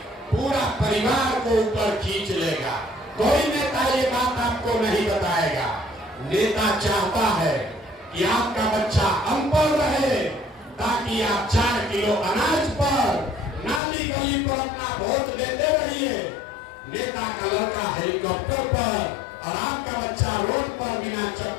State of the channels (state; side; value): drops out; right; at 13.8 s